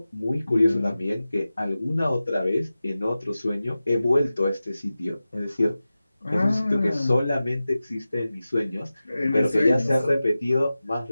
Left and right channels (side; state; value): both; inverted; correlation -0.95